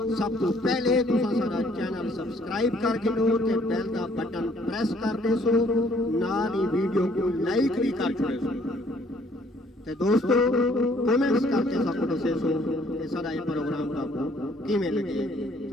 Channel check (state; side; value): normal; both; correlation 0.62